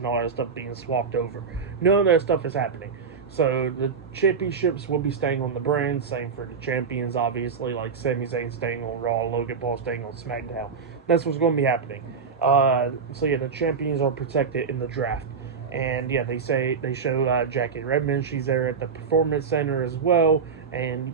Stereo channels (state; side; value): quieter; left; 5.6 dB